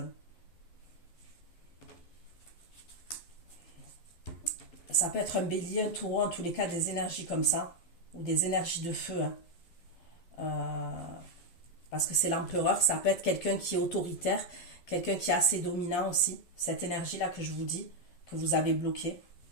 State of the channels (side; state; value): right; late; 11 ms